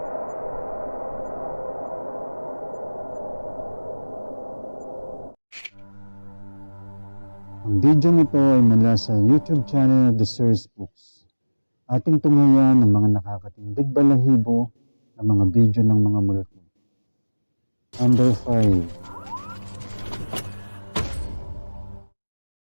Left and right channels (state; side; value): inverted; both; correlation -1.00